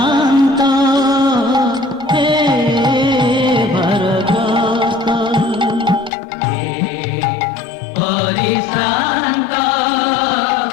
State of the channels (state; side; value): drops out; right; at 6.1 s